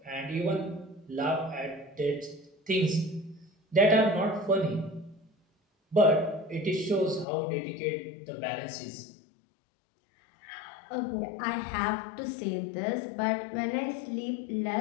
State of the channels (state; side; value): drops out; right; at 7.2 s